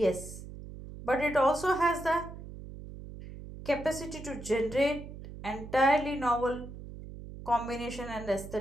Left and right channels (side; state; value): right; noise; hum, 13 dB below the sound